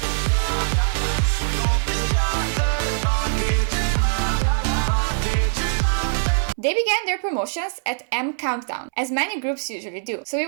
They began their promotions at M Countdown, as many groups usually do, so we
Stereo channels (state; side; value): silent; left; 64 dB below the other